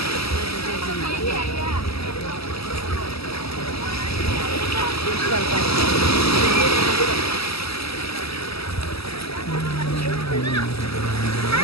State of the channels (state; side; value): late; right; 0.77 ms